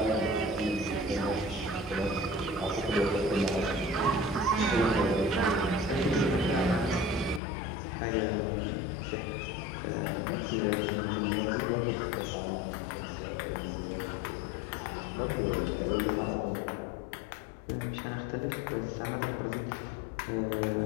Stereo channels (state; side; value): drops out; right; at 7.4 s